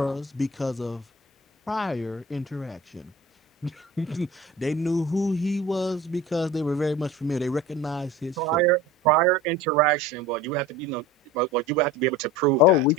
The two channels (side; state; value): both; normal; correlation 0.37